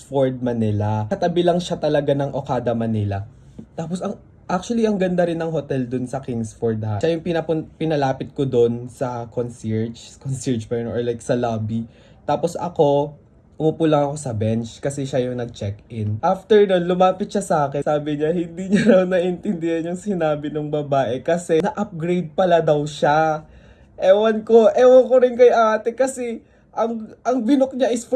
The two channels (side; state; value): both; identical; correlation 1.00